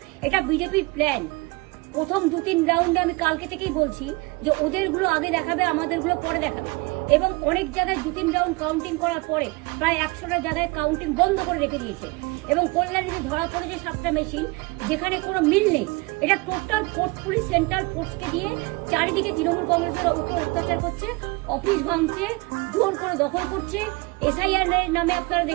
এটা বিজেপির প্ল্যান। প্রথম 2-3 রাউন্ডে আমি কালকে থেকেই বলছি যে ওদেরগুলো আগে দেখাবে, আমাদেরগুলো পরে দেখাবে। এবং অনেক জায়গায় 2-3 রাউন্ড কাউন্টিং করার পরে প্রায় 100টা জায়গায় কাউন্টিং বন্ধ করে রেখে দিয়েছে। এবং কল্যাণীতে ধরা পড়েছে 7টা মেশিন, যেখানে কোনো মিল নেই। এটা টোটাল পোর্ট পুলিশ সেন্ট্রাল ফোর্সকে দিয়ে চারিদিকে তৃণমূল কংগ্রেসের উপর অত্যাচার করছে, অফিস ভাঙছে, জোর করে দখল করছে। এসআইআর নামে আপনারা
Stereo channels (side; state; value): left; quieter; 25.2 dB